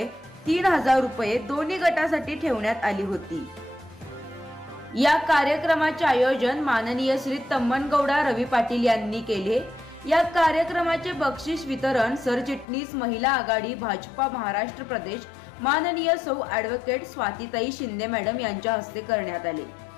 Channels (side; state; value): right; drops out; at 12.7 s